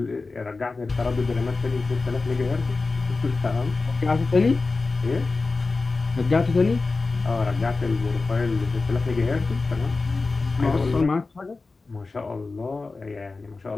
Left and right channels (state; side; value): quieter; right; 3.8 dB